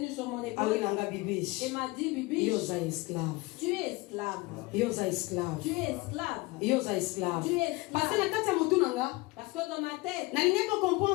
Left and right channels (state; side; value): quieter; right; 23.0 dB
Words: sur mon Awe épaule nanga bibish. et m'a dit, Bibi, Yoza esclave. tu es esclave. Yoza esclave. Tu es esclave. Yoza esclave. Tu es esclave. Parce que na kati ya mutu nanga, Parce que dans ma tête, na lingi ko